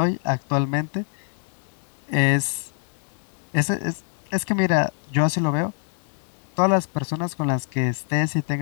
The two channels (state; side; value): silent; right; digital silence